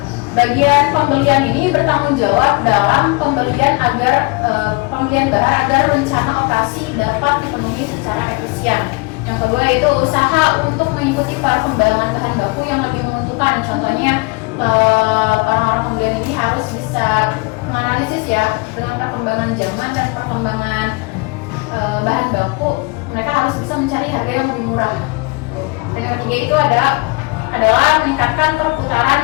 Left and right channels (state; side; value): quieter; right; 27.5 dB